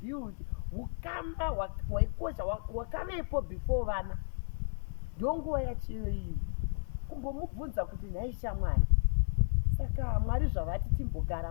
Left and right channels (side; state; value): right; silent; digital silence